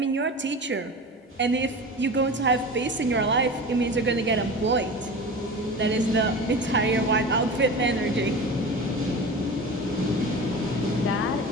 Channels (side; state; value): both; normal; correlation 0.32